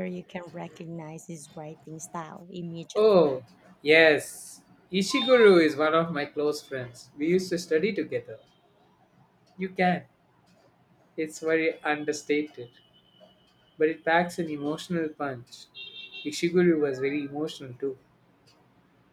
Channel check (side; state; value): both; identical; correlation 1.00